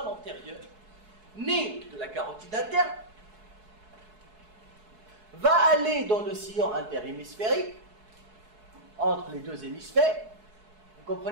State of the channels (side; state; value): left; late; 4.7 ms